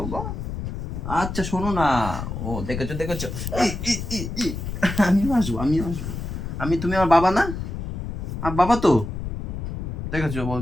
বাবা। আচ্ছা শোনো না, ও দেখেছো দেখেছো, আমিও আসবো আমিও আসবো। তুমি আমার বাবা না? আর বাবা তো, দেখেছো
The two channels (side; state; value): left; noise; rumble, 5 dB below the sound